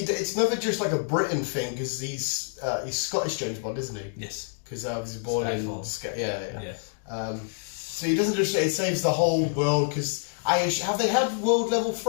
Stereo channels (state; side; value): silent; right; digital silence